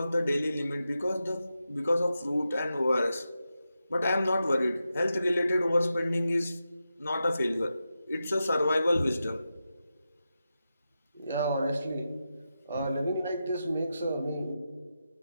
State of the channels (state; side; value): inverted; both; correlation -0.90